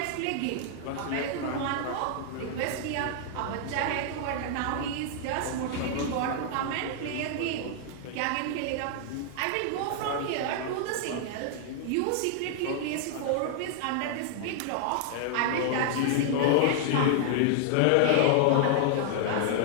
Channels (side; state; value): both; different; correlation -0.01